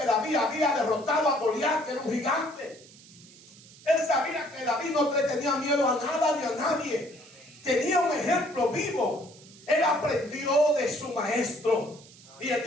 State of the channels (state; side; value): noise; right; hiss, 22 dB below the sound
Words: David había derrotado a Goliat, que era un gigante. Él sabía que David no le tenía miedo a nada ni a nadie. Tenía un ejemplo vivo. Él aprendió de su maestro. Y él